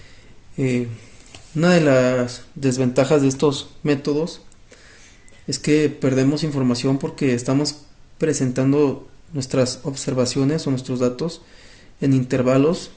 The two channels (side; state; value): both; identical; correlation 1.00